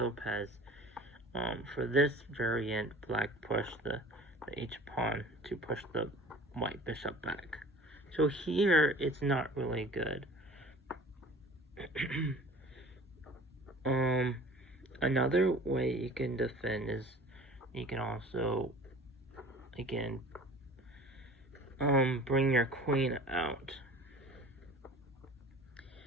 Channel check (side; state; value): both; normal; correlation 0.44